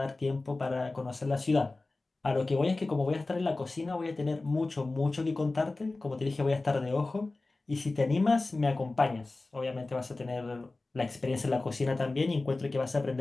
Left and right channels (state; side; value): quieter; right; 3.2 dB